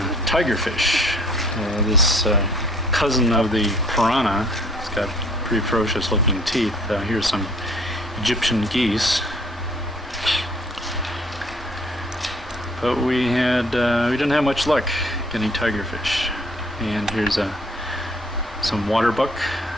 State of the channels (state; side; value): normal; both; correlation 0.58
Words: tigerfish. This cousin of the piranha. It's got pretty ferocious looking teeth. Here's some Egyptian geese. But we didn't have much luck getting tigerfish. And here's some water buck